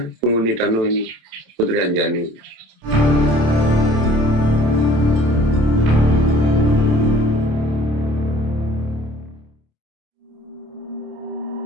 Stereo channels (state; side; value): late; left; 27 ms